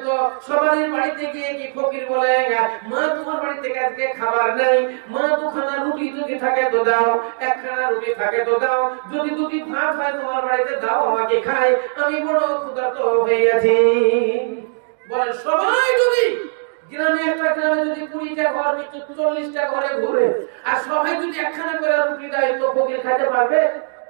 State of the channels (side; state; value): left; silent; digital silence